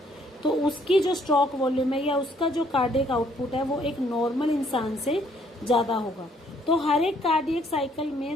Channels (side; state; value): both; normal; correlation 0.65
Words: तो उसकी जो स्ट्रोक वॉल्यूम है या उसका जो कार्डियक आउटपुट है वो एक नॉर्मल इंसान से ज्यादा होगा। तो हर एक कार्डियक साइकिल